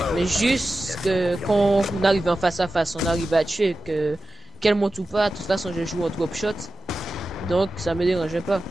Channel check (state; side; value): normal; both; correlation 0.93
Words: mais juste que quand on arrive en face à face, on arrive à tuer, qu'elle monte ou pas, de toute façon je joue en drop shot, donc ça me dérangeait pas.